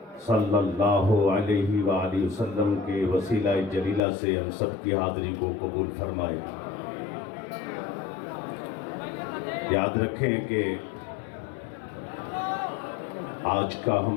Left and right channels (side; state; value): right; drops out; at 4.0 s